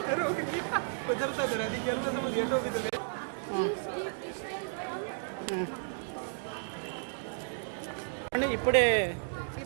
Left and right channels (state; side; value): silent; left; digital silence